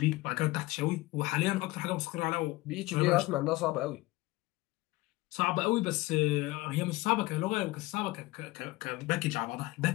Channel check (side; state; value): right; quieter; 20.1 dB